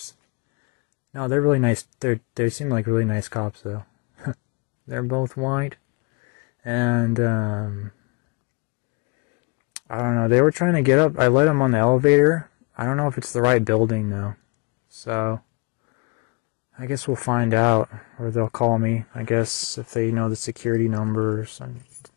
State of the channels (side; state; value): right; quieter; 31.8 dB